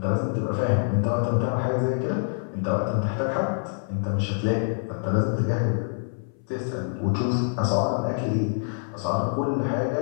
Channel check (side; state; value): right; silent; 61 dB below the other